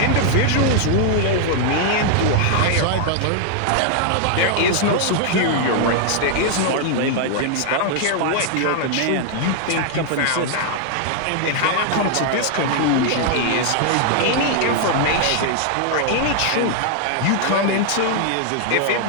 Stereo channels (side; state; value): both; different; correlation 0.00